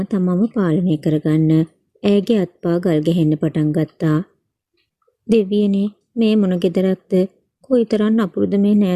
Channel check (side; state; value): both; identical; correlation 1.00